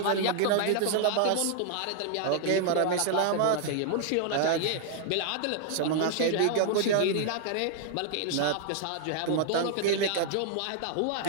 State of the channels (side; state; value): both; different; correlation -0.01